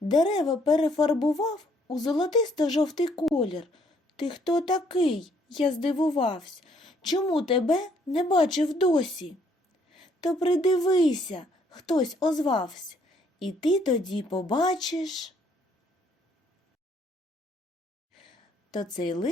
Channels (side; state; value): both; normal; correlation 0.66